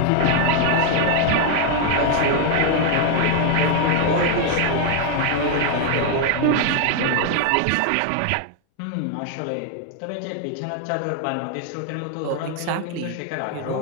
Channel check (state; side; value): different; both; correlation 0.00